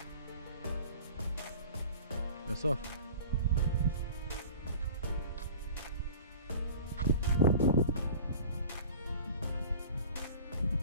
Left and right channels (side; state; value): both; inverted; correlation -0.41